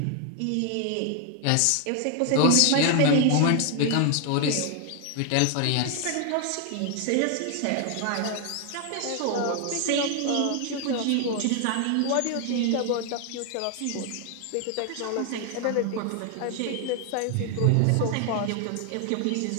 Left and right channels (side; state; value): both; different; correlation 0.00